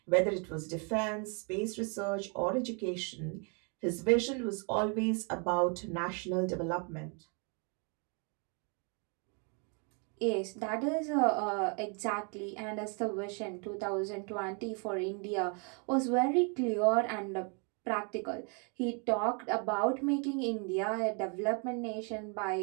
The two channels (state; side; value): quieter; left; 36.7 dB